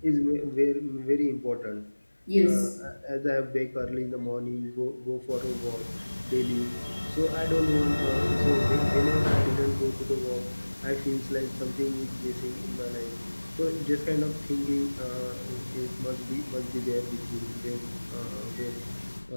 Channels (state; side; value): inverted; both; correlation -1.00